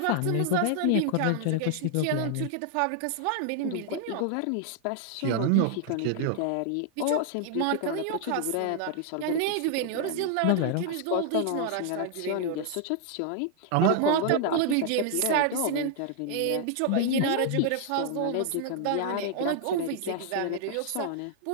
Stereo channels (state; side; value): different; both; correlation 0.00